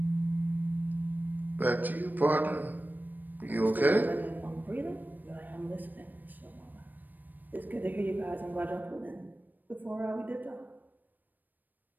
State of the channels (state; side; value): late; left; 0.088 ms